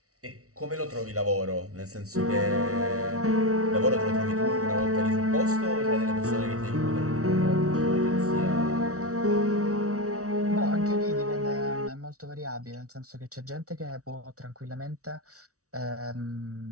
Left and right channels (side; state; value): left; late; 0.65 ms